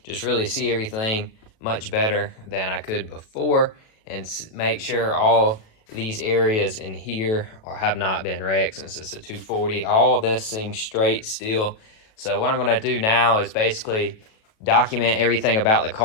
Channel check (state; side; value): late; right; 37 ms